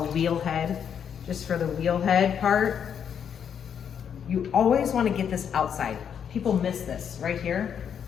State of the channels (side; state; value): right; quieter; 8.0 dB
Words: a wheel head, just for the wheel head part. You always want to get this outside. People miss this right here.